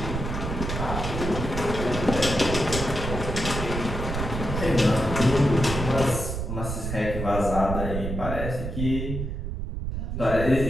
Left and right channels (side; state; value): right; noise; rumble, 4 dB below the sound